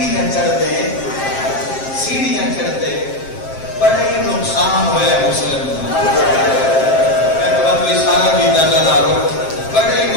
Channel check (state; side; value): late; right; 7.5 ms